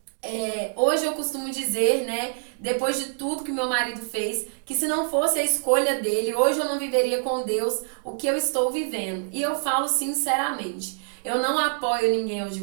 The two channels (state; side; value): silent; left; digital silence